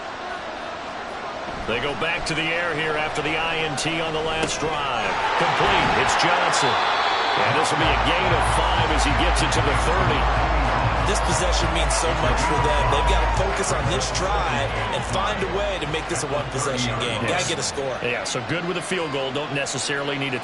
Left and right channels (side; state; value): both; identical; correlation 1.00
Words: They go back to the air here after the INT on the last drive. Complete. It's Johnson. And this will be a gain of 5 as he gets it to the 30. This possession means so much for them. They've got to focus on this drive and find a way to make this a one-possession game. Yes. Got to get a score. Yeah, so good with a field goal. Don't necessarily need a